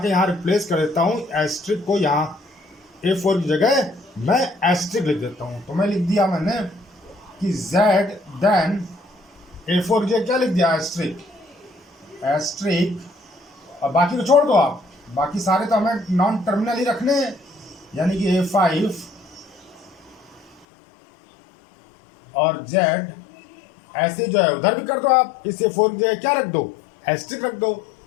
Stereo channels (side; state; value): right; drops out; at 20.7 s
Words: यहाँ रिप्लेस कर देता हूँ, एस्ट्रिक को यहाँ A4 की जगह मैं एस्ट्रिक लिख देता हूँ। तो मैं लिख दिया मैंने कि Z देन A4 की जगह क्या लिख दिया, एस्ट्रिक, और बाकी को छोड़ दो आप, बाकी सारे तो हमें नॉन टर्मिनल ही रखने हैं, यानी कि A5 और Z ऐसे जो है उधर भी कर दो आप, इस A4 की जगह क्या रख दो, एस्ट्रिक रख दो।